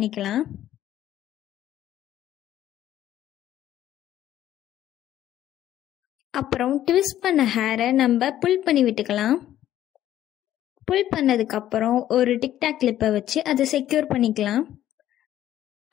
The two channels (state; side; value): quieter; right; 12.4 dB